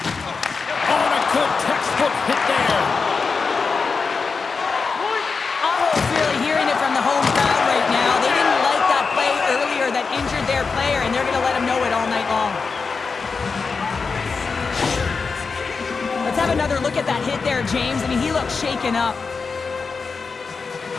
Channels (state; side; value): quieter; right; 4.8 dB